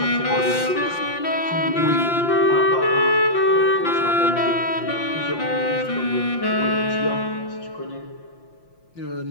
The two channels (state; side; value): late; right; 5.8 ms